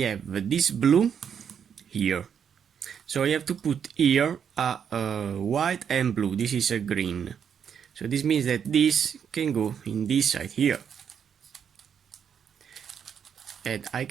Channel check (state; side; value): quieter; left; 7.7 dB